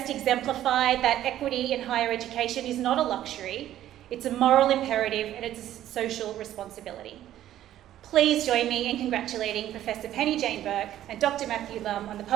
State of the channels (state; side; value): quieter; left; 12.5 dB